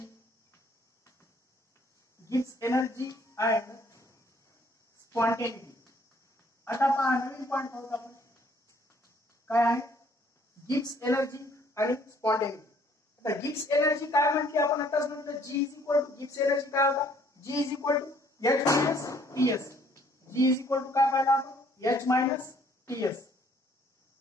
and spontaneity. आता पहा नवीन point पाहू आपण काय आहे, गिब्स एनर्जी आणि स्पॉन्टेनिटी. आता गिब्स एनर्जी काय म्हणते आपण आताच म्हटलं, G is equal to Gibbs energy काय होता, G is equal to H minus TS. G is equal to काय पाहिलं आपण, H मायनस TS.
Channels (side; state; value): both; normal; correlation 0.62